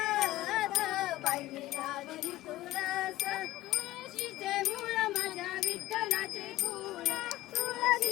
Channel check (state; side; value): quieter; right; 16.5 dB